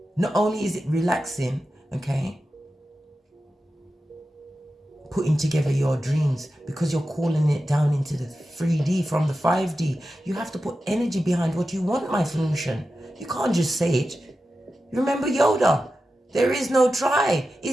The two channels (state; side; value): normal; both; correlation 0.92